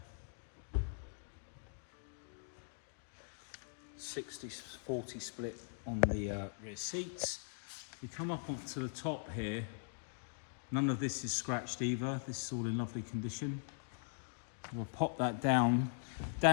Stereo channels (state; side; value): silent; right; digital silence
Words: 60-40 split on the rear seats. If we come up onto the top here, none of this is scratched either. This is all in lovely condition. We'll pop that down.